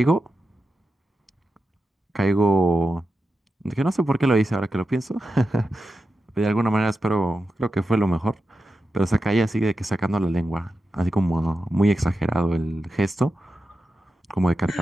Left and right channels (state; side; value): normal; both; correlation 0.90